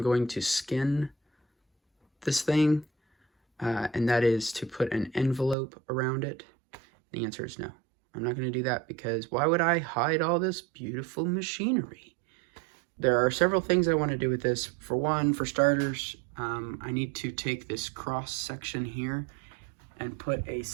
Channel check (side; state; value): left; drops out; at 5.6 s